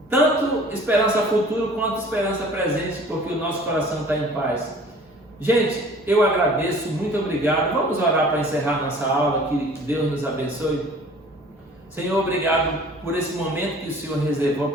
tanto esperança futura quanto esperança presente, porque o nosso coração está em paz. Gente, eu agradeço, muito obrigado. Vamos orar para encerrar nossa aula, que Deus nos abençoe. Senhor, obrigado por esse momento que o Senhor reservou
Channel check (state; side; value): normal; both; correlation 0.49